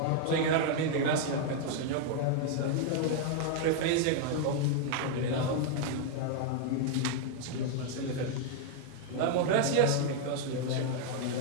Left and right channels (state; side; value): different; both; correlation 0.00